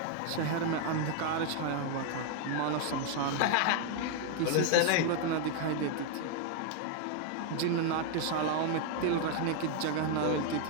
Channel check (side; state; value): both; different; correlation 0.00